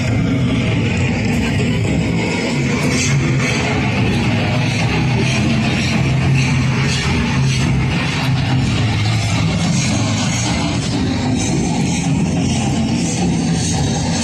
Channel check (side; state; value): both; identical; correlation 1.00